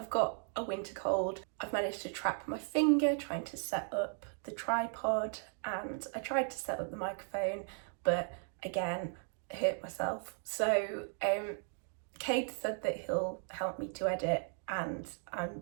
got a winter cold. I've managed to trap my finger trying to set up the tripod, and I tried to set up the microphone, but again, I hurt myself. So Cade said that he'll help me to edit, and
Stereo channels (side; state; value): left; silent; 53 dB below the other